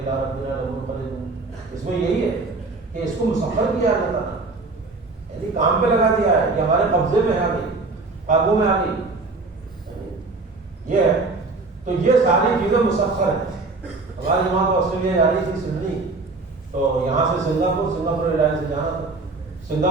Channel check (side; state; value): left; quieter; 3.6 dB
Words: ربنا لمنقلبون. اس میں یہی ہے کہ اس کو مسخر کیا جاتا ہے، یعنی کام پہ لگا دیا ہے، یہ ہمارے قبضے میں آ گئی، قابو میں آ گئی. یہ ہے تو یہ ساری چیزیں مسخر ہیں. ہماری جماعت آسٹریلیا جا رہی تھی سڈنی، تو یہاں سے سنگاپور ایئر لائن سے جانا تھا.